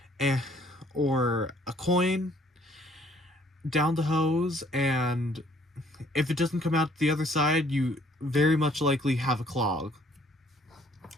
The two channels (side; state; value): both; normal; correlation 0.61